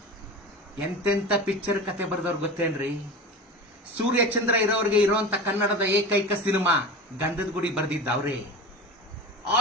ಎಂತೆಂತ ಪಿಕ್ಚರ್ ಕತೆ ಬರೆದವ್ರು ಗೊತ್ತೇನ್ರಿ? ಸೂರ್ಯಚಂದ್ರ ಇರೋರಿಗೆ ಇರೋಂತ ಕನ್ನಡದ ಏಕೈಕ ಸಿನಿಮಾ ಗಂಧದ ಗುಡಿ ಬರೆದಿದ್ದವ್ರೆ.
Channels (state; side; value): normal; both; correlation 0.30